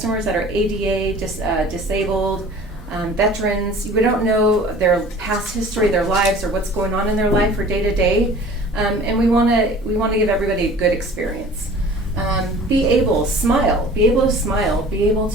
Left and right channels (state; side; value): normal; both; correlation 0.46